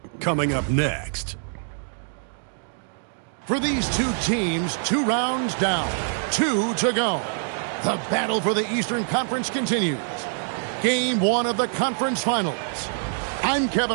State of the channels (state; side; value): silent; left; digital silence